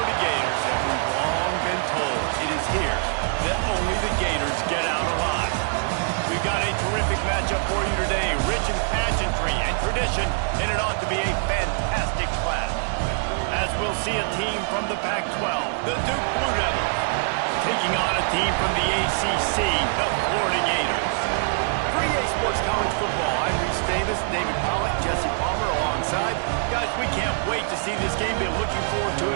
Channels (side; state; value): left; silent; 62 dB below the other